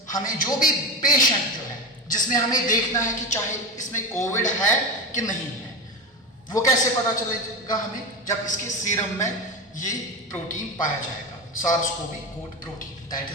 हमें जो भी पेशेंट जो है जिसमें हमें देखना है कि चाहे इसमें कोविड है कि नहीं है, वो कैसे पता चलेगा हमें, जब इसके सीरम में ये प्रोटीन पाया जाएगा, SARS CoV coat protein, that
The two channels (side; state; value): both; normal; correlation 0.20